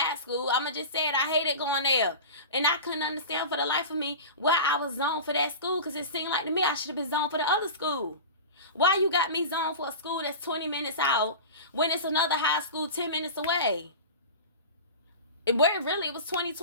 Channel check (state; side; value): inverted; both; correlation -0.30